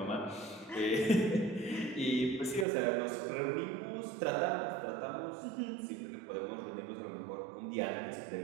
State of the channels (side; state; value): left; drops out; at 2.7 s